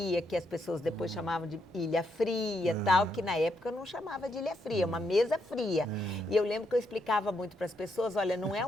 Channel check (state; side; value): normal; both; correlation 0.78